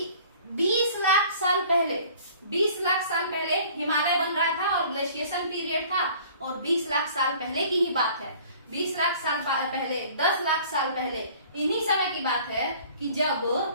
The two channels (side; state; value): both; inverted; correlation -0.51